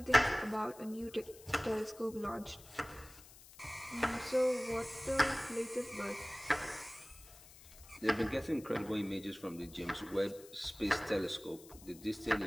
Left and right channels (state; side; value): noise; left; hiss, 20 dB below the sound